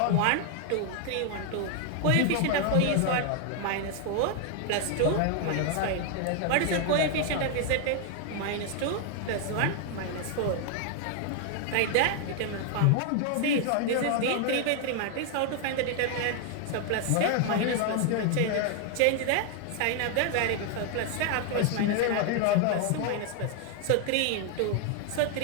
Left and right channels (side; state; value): both; different; correlation 0.00